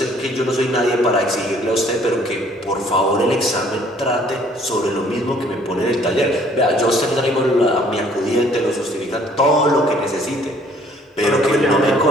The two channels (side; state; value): both; normal; correlation 0.59